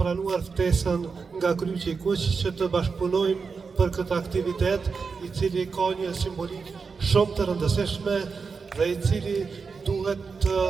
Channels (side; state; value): left; quieter; 5.1 dB